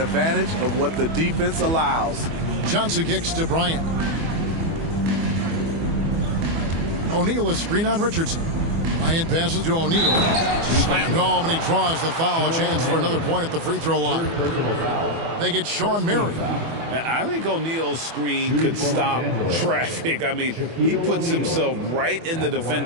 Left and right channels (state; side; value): late; left; 24 ms